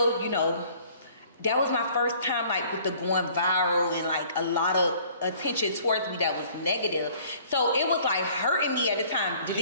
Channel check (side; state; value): both; inverted; correlation -0.55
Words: you know, that was my first time like with the going viral and like a lot of attention towards me that was negative. So it was like hurting me at the time.